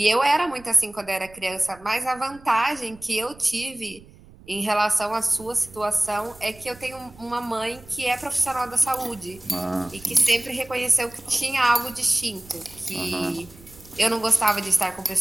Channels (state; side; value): noise; right; rumble, 22 dB below the sound